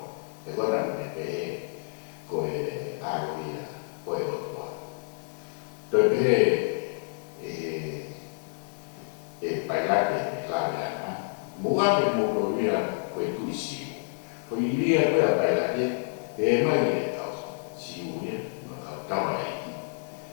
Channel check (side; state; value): right; silent; digital silence